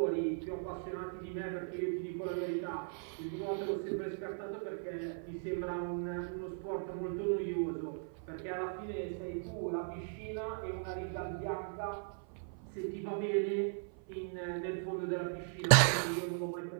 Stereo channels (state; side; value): silent; left; 53 dB below the other